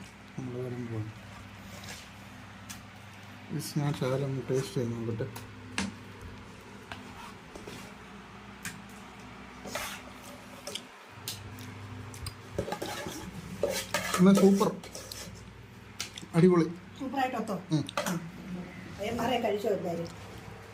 നമ്മൾ വരുമ്പോൾ ഞാൻ ശകലം ടേസ്റ്റ് ചെയ്ത് നോക്കട്ടെ. എന്നാൽ സൂപ്പർ, അടിപൊളി, സൂപ്പറായിട്ടോ. മാറെ കഴിച്ചോ എല്ലാവരും.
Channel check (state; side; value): identical; both; correlation 1.00